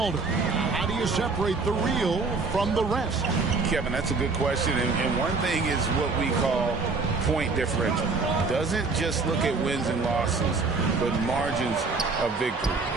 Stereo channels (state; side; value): quieter; left; 4.2 dB